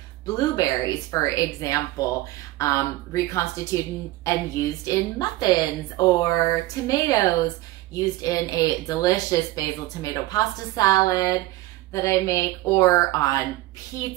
blueberries, for example, reconstituted and used in muffins, or tomatoes, used in a delicious basil tomato pasta salad that I make, or on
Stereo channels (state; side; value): quieter; left; 17.8 dB